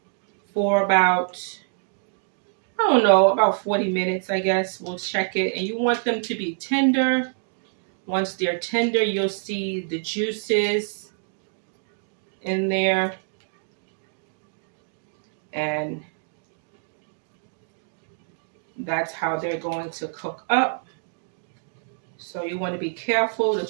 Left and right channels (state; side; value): silent; left; digital silence